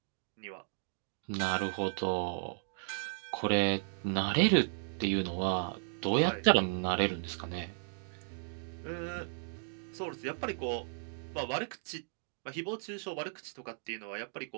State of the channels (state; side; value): silent; left; digital silence